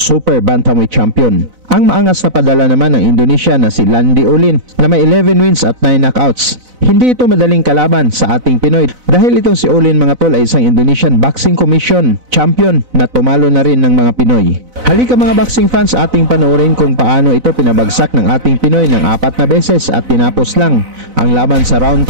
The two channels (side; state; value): left; late; 4.0 ms